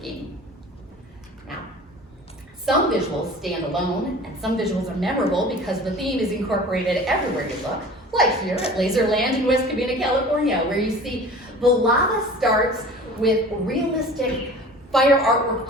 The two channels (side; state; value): both; normal; correlation 0.42